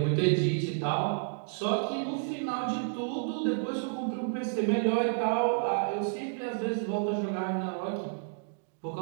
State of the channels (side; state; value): left; silent; digital silence